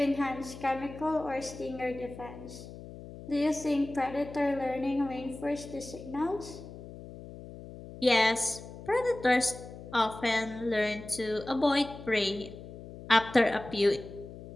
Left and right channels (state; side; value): noise; left; hum, 14 dB below the sound